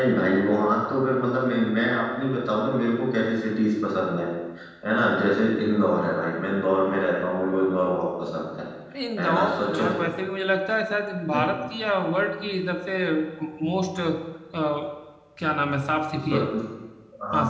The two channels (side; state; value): both; identical; correlation 1.00